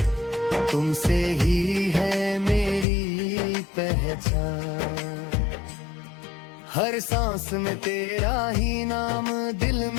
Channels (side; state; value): right; drops out; at 2.9 s